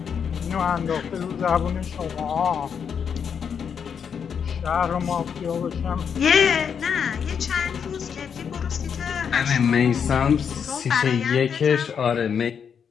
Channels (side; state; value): right; quieter; 7.2 dB